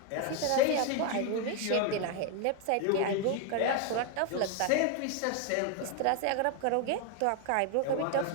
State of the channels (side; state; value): both; different; correlation 0.01